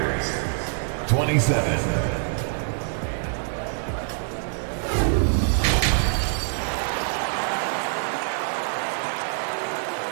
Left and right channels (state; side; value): silent; left; digital silence